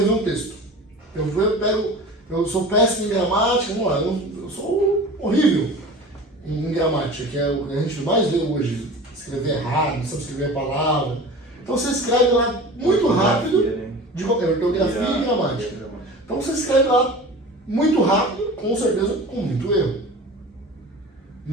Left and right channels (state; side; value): normal; both; correlation 0.37